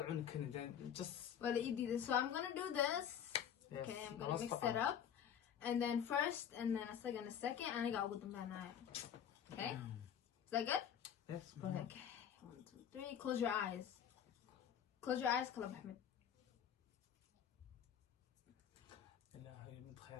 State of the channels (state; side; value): quieter; right; 8.9 dB